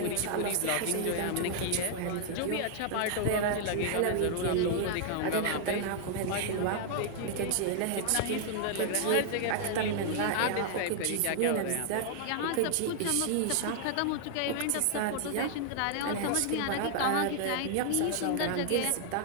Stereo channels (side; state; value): both; different; correlation 0.00